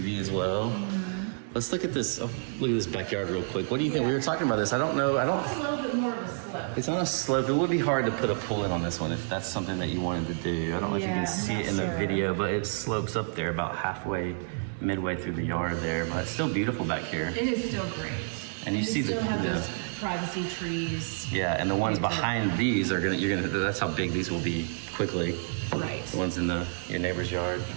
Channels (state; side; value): silent; left; digital silence